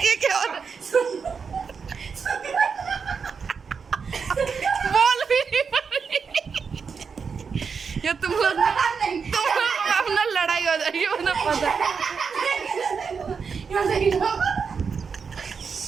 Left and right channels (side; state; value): left; quieter; 5.8 dB